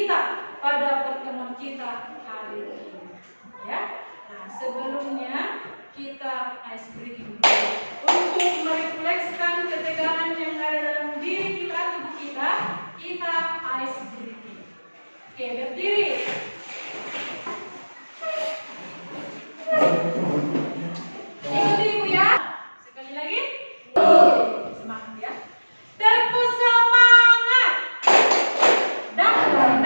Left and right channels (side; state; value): both; inverted; correlation -1.00